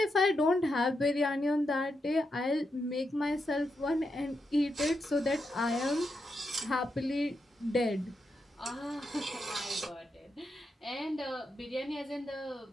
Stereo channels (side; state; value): both; normal; correlation 0.84